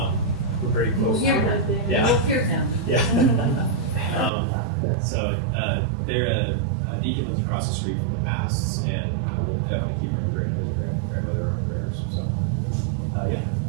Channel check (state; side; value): drops out; left; at 4.3 s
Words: we're pretty close. We'll hear him. Yeah. We'll hear him. Yeah. They're Deacon lives across the street from the masks, and we'll definitely keep remembering his grandmother in our prayers. So, yeah.